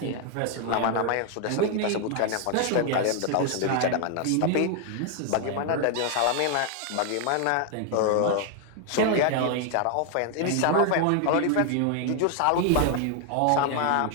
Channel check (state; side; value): different; both; correlation 0.00